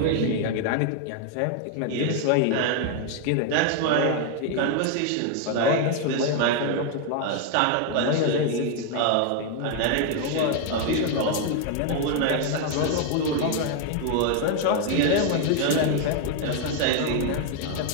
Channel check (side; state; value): both; different; correlation 0.00